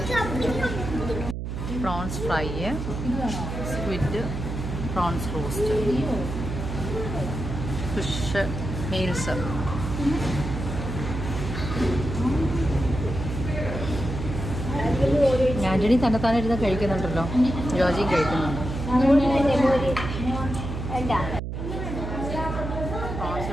Prawns fry, squid, prawns roast, fish meals. Antony തന്നെത്താനിരുന്ന് കഴിക്കുന്നുണ്ടല്ലോ. ജോജിയും കഴിക്കുന്നുണ്ട്. പ്രോൺസ്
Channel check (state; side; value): noise; right; hum, 5 dB below the sound